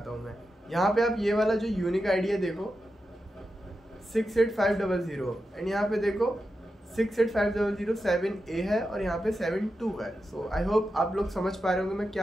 हूँ मैं. यहाँ पे आप ये वाला जो यूनिक आईडी है देखो 68500, एंड यहाँ पे देखो 68500 है और यहाँ पे 72 है. सो आई होप आप लोग समझ पा रहे होंगे मैं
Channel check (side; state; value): both; normal; correlation 0.89